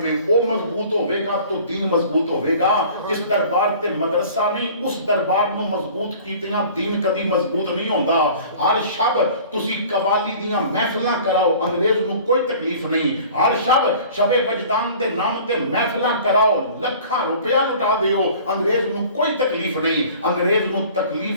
ہے وہ مضبوط ہوئے گا تو دین مضبوط ہوئے گا. جس دربار تے مدرسہ نہیں اس دربار کو مضبوط کیتیاں دین کدی مضبوط نہیں ہوندا. ہر شب تسی قوالی دیاں محفلاں کراؤ انگریز نو کوئی تکلیف نہیں. ہر شب شب وجدان دے نام تے محفلاں کراؤ لکھاں روپیہ لٹا دیو انگریز نو کوئی تکلیف نہیں. انگریز نو تکلیف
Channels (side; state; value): both; inverted; correlation -0.46